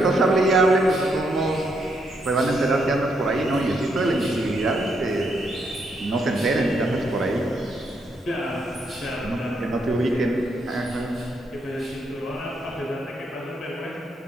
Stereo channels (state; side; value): normal; both; correlation 0.77